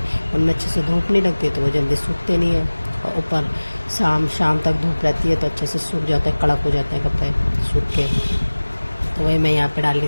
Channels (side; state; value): both; inverted; correlation -1.00